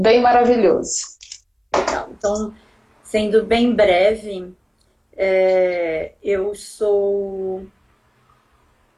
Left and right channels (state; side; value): identical; both; correlation 1.00